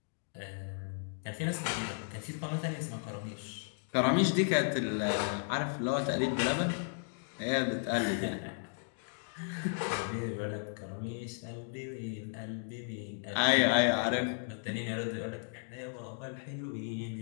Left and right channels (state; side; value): silent; right; digital silence